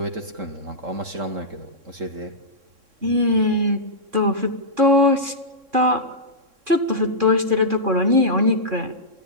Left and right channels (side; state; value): left; late; 3.6 ms